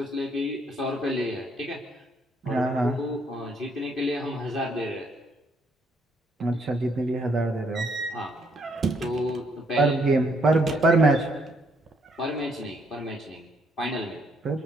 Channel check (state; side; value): normal; both; correlation 0.70